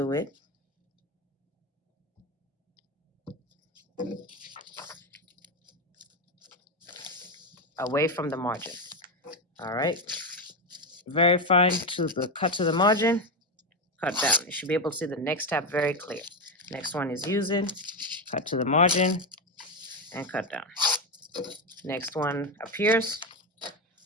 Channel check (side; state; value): both; normal; correlation 0.12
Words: it. Away from the margin. All right. Very fine to the cut to the margin, cut down. You should be able to see the next tab very clear. Next one is using, cut to the margin and cut down. Next one appears,